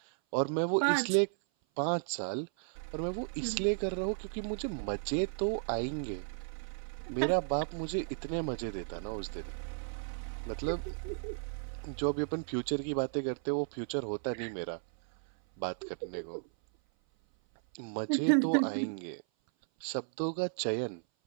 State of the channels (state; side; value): silent; left; 55 dB below the other